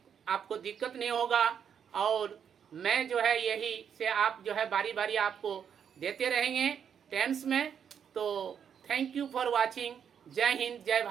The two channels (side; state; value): left; quieter; 7.9 dB